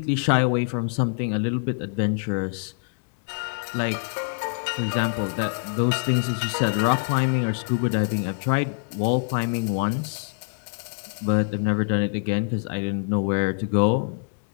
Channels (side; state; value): right; silent; digital silence